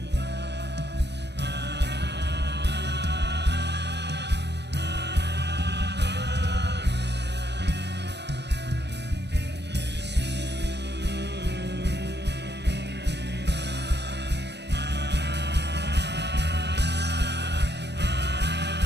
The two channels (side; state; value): left; late; 0.50 ms